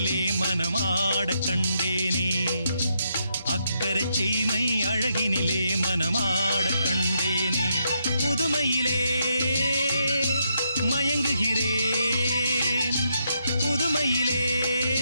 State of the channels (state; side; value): inverted; both; correlation -0.79